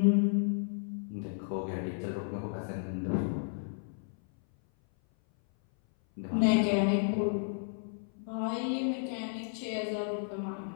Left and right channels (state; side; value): silent; right; 56 dB below the other